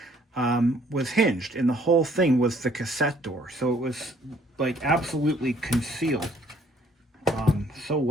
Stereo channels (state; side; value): normal; both; correlation 0.62